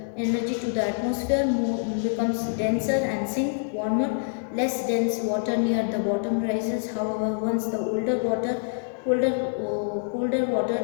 the atmosphere, becomes denser and sink warmer. Less dense water near the bottom rises. However, once the colder water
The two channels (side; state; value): right; silent; digital silence